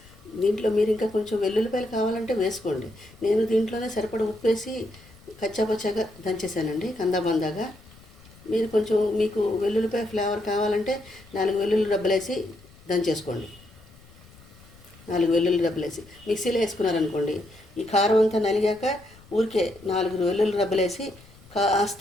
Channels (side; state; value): left; noise; rumble, 24 dB below the sound